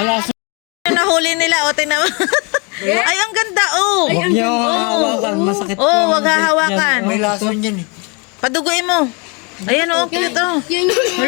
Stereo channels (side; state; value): right; quieter; 31.7 dB